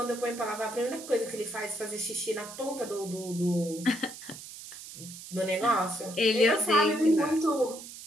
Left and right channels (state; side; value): noise; right; hiss, 13 dB below the sound